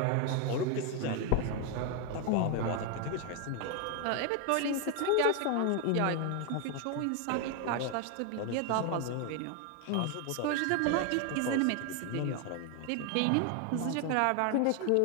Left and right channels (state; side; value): different; both; correlation 0.01